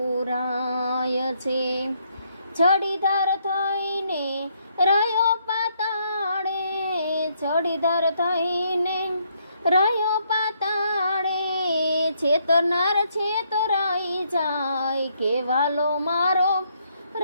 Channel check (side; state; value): both; inverted; correlation -0.72